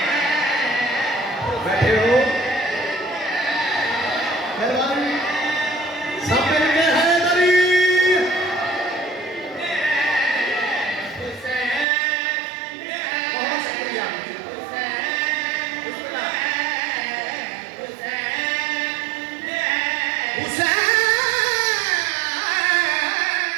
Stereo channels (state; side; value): drops out; left; at 11.9 s